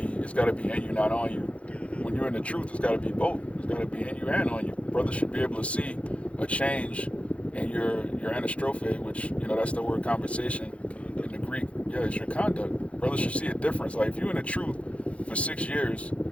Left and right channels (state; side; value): late; right; 0.063 ms